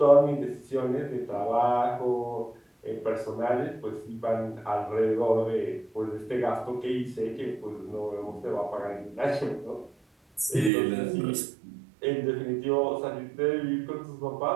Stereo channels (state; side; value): drops out; left; at 10.7 s